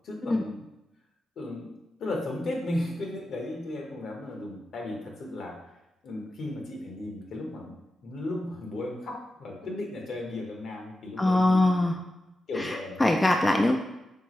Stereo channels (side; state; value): both; normal; correlation 0.92